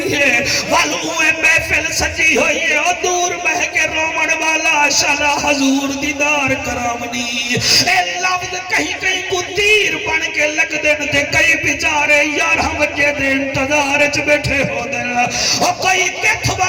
ہے والویں محفل سجی ہوئی ہے اور دور بہ کے رومن والا شالا حضور دیدار کرامنی اے لفظ کہیں کہیں کو تیر بن کے لگ دن تھے کئی بیچارے 11 بجے دے انتظار چ بیٹھے ہو دن اور کوئی کتھ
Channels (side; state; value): both; identical; correlation 1.00